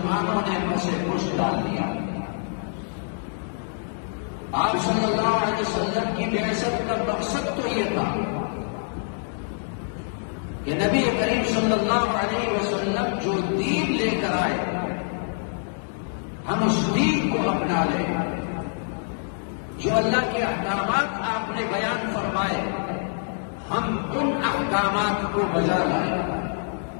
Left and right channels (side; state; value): right; silent; digital silence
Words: نے پس پش ڈال دیا۔ آپ صلی اللہ علیہ وسلم کی بعثت کا مقصد تو یہ تھا کہ نبی کریم صلی اللہ علیہ وسلم جو دین لے کر آئے ہم اس دین کو اپنا لیں، جو اللہ کے احکامات آپ نے بیان فرمائے ہم ان احکامات کو بجا لائیں،